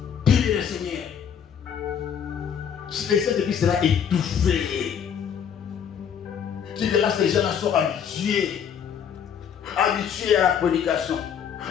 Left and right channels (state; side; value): quieter; right; 8.1 dB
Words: Le Seigneur. Le Saint-Esprit sera étouffé. Tu verras ces gens-là sont habitués. Habitués à la prédication.